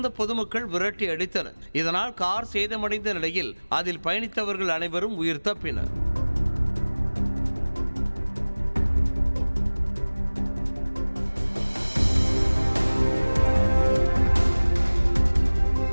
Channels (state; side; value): inverted; both; correlation -1.00